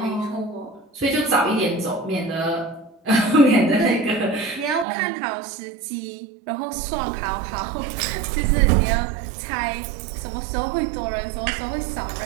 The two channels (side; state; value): left; drops out; at 4.9 s